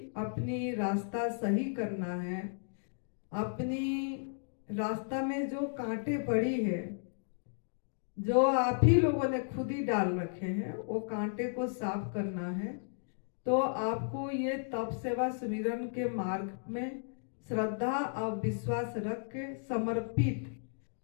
अपनी रास्ता सही करना है, अपनी रास्ता में जो कांटे पड़ी है, जो आप ही लोगों ने खुद ही डाल रखे हैं, वो कांटे को साफ करना है, तो आपको ये तप सेवा सुमिरन के मार्ग में श्रद्धा और विश्वास रख के समर्पित,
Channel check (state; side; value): silent; right; digital silence